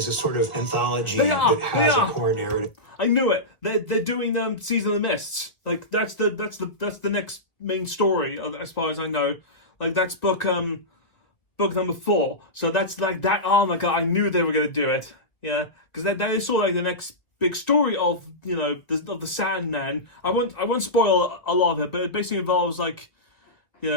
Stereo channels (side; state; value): right; late; 1.6 ms